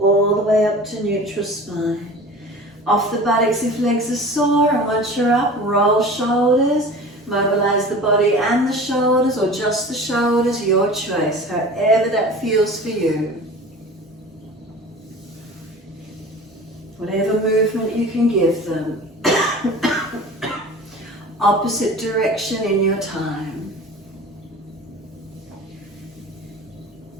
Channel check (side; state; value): both; normal; correlation 0.39